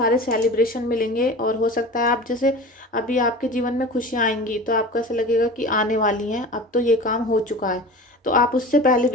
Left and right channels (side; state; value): both; normal; correlation 0.35